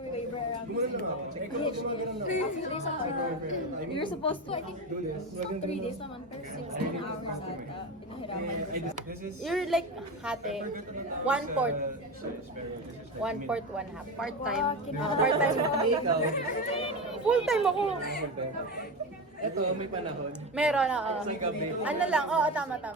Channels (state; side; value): normal; both; correlation 0.21